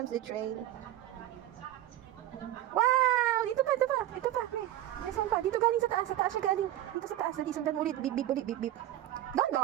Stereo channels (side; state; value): left; quieter; 13.7 dB